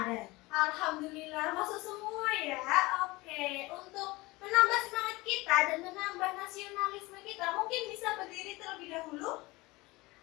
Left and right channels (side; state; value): right; quieter; 21.9 dB